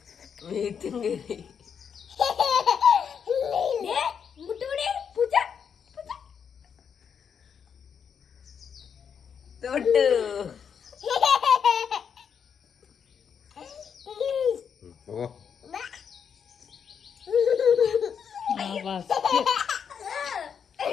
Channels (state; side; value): quieter; right; 7.2 dB